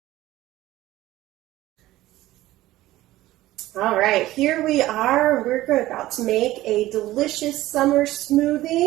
All right, here we are. We're about to make a delicious summer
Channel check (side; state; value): left; quieter; 16.2 dB